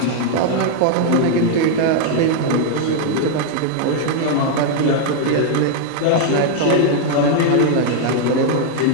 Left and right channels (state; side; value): different; both; correlation 0.00